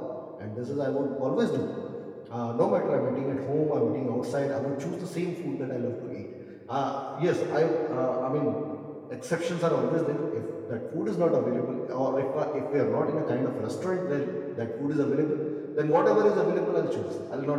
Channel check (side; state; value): both; identical; correlation 1.00